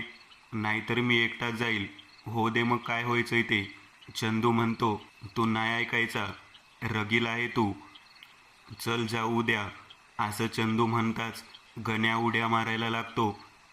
नाहीतर मी एकटाच जाईल. हो दे, मग काय व्हायचंय ते. चंदू म्हणतो, तू नाही ऐकायचा, रगील आहे तू, चल जाऊ उद्या. असं चंदू म्हणताच गण्या उड्या मारायला लागतो.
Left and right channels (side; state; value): both; identical; correlation 1.00